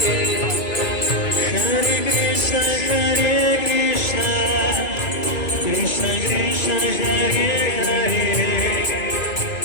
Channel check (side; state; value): right; late; 2.5 ms